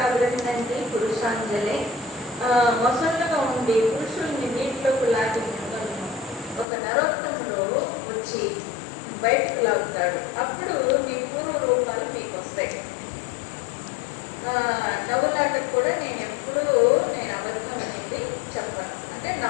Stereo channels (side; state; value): right; drops out; at 6.7 s